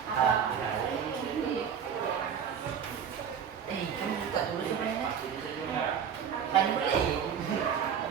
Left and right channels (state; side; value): quieter; left; 7.8 dB